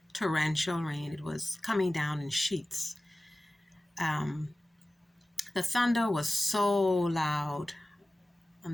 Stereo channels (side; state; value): both; normal; correlation 0.96